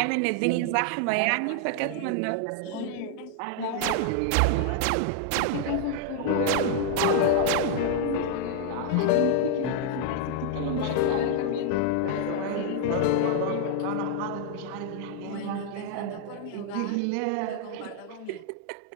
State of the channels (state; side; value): different; both; correlation 0.00